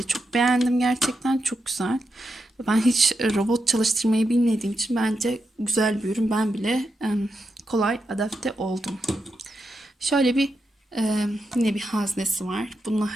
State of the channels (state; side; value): normal; both; correlation 0.86